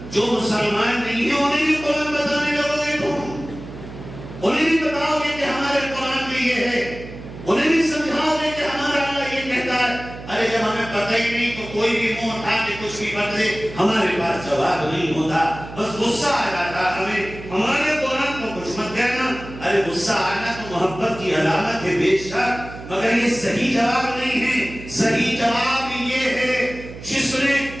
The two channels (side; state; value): right; noise; hum, 14 dB below the sound